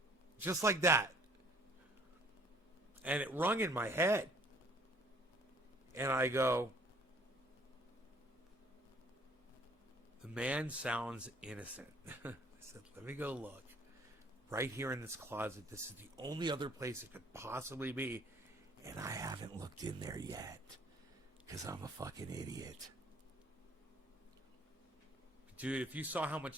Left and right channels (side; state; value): both; normal; correlation 0.58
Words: Just like that. And it rung in my head. And I go, the man sounds innocent. I said, let me go look. Right here in this closet. This is the only other place it could possibly be. And I haven't looked in there yet. Because I'm a fucking idiot. Dude, if you saw how